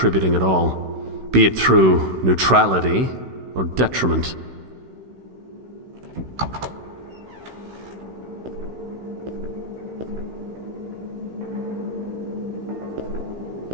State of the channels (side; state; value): left; late; 16 ms